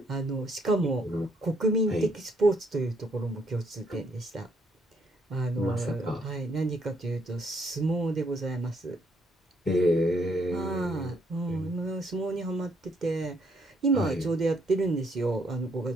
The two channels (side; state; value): both; normal; correlation 0.71